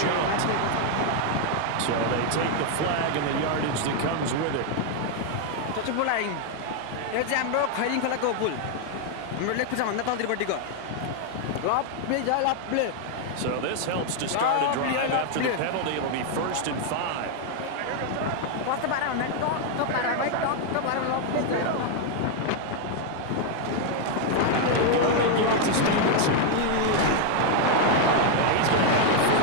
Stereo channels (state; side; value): different; both; correlation 0.00